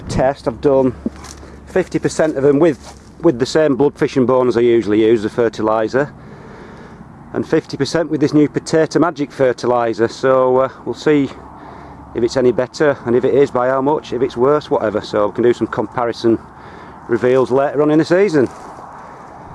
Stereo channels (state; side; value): identical; both; correlation 1.00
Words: test. I've done 50% of them with the same blood fish and bone as I usually use, the fertilizer, and 50% with this new Potato Magic fertilizer. So we'll see if it's any better, and if it is, by how much, if it's worse, whatever. So we can do some comparison reveals later on in the season.